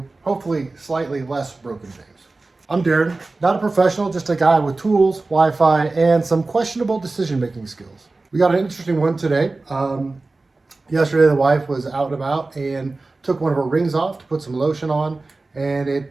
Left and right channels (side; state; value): left; quieter; 3.4 dB